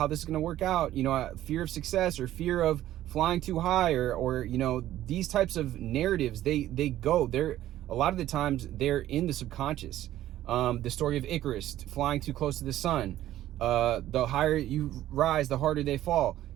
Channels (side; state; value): left; quieter; 13.4 dB